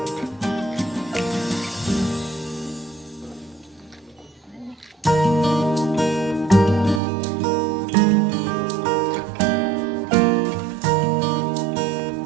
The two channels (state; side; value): drops out; left; at 7.0 s